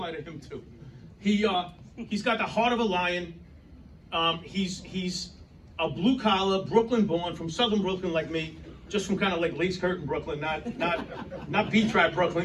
to him too. He's got the heart of a lion. He's a blue collar, Brooklyn born, from southern Brooklyn like me, just from kind of like Lace Curtain Brooklyn, not Beach-Trap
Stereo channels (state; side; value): identical; both; correlation 1.00